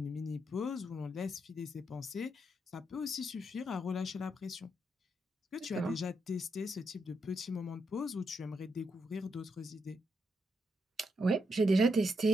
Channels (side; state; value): both; normal; correlation 0.81